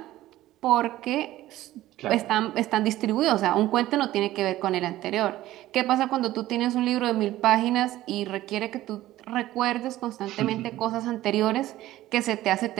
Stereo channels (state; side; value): quieter; left; 15.3 dB